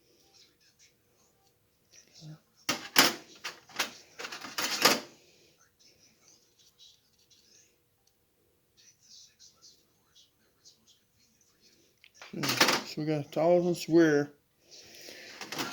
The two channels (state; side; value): identical; both; correlation 1.00